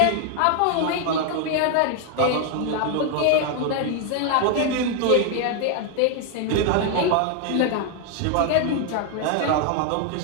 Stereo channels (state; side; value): different; both; correlation 0.00